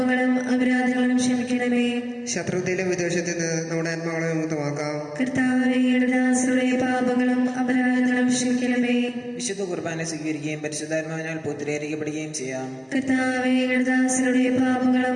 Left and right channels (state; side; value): identical; both; correlation 1.00